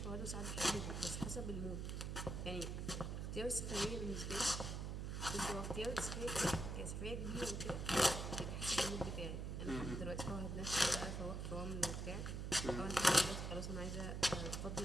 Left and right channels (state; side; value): noise; right; hum, 3 dB below the sound